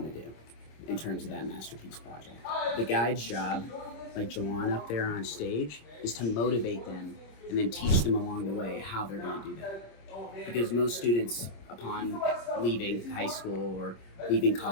to do in terms of that masterpiece project. The guide's job, like Joanne up there on stage, is to motivate them and then teach them along the way how they're going to do that. Because most students, upon leaving high school or leaving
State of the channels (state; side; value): late; right; 26 ms